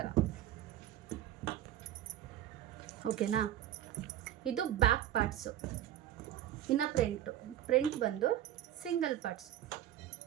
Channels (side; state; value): left; quieter; 12.1 dB